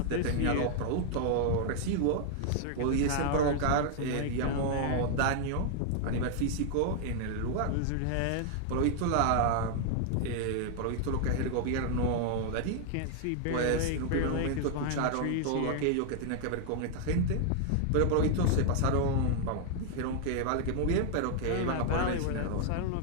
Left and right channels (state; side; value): different; both; correlation 0.00